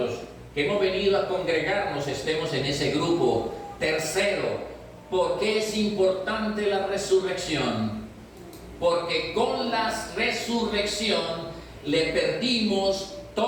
que hemos venido a congregarnos estemos en ese grupo. Tercero, ¿por qué es importante la resurrección? Porque con la resurrección le perdimos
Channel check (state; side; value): identical; both; correlation 1.00